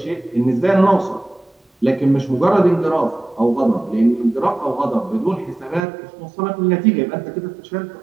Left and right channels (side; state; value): left; drops out; at 5.9 s